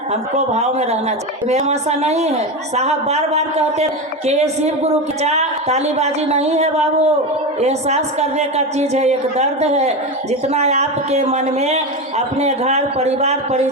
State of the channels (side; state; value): both; normal; correlation 0.18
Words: भाव में रहना चाहिए, ऐसा नहीं है। साहब बार बार कहते हैं कि ये शिव गुरु की तालीबाजी नहीं है बाबू, एहसास करने का चीज है, एक दर्द है। जितना आपके मन में अपने घर परिवार